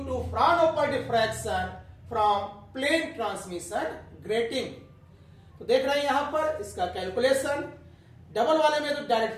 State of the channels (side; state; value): both; identical; correlation 1.00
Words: Fraunhofer diffraction from plane transmission grating. तो देख रहे हैं यहां पर इसका कैलकुलेशन, डबल वाले में तो